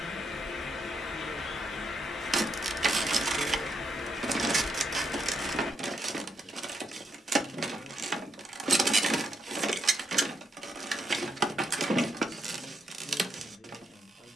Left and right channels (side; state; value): both; normal; correlation 0.79